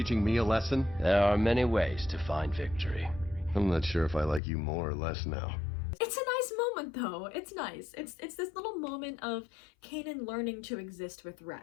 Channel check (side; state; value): right; drops out; at 4.4 s